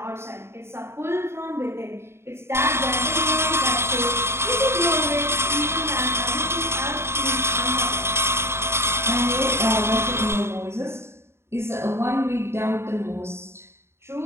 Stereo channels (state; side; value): late; left; 0.12 ms